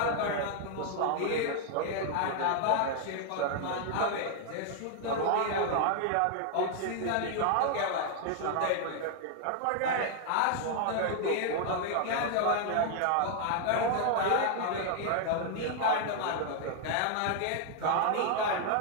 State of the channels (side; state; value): both; different; correlation 0.00